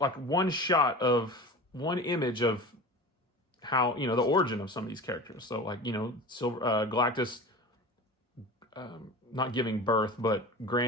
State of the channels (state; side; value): normal; both; correlation 0.34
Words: shot of one image of how, you know, the origin of some of these characters. So like, you know, Galactus not giving birth, but